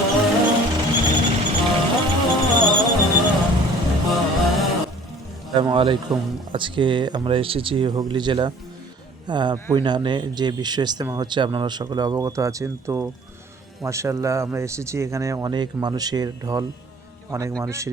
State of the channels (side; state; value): both; normal; correlation 0.50